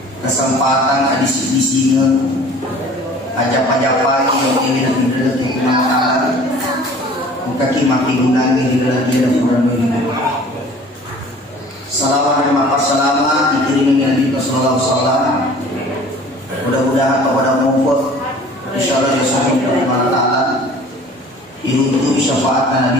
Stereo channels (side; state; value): both; normal; correlation 0.48